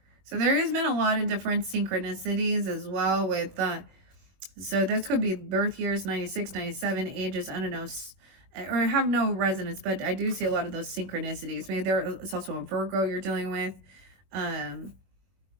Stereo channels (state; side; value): late; left; 21 ms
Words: So there has been a lot of different synchronicities as well with so this could be birth years 96, 97, ages, I don't know, or have no resonance, but I do see a lot of those synchronicities. Maybe it's also a Virgo you're dealing with,